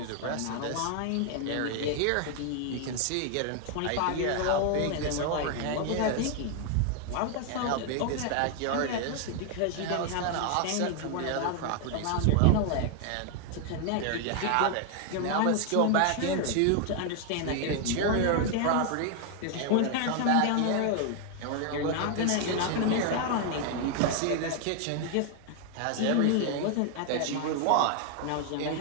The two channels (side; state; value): both; different; correlation 0.00